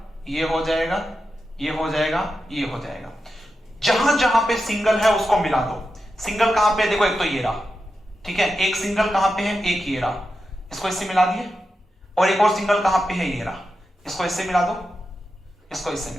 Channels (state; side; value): normal; both; correlation 0.89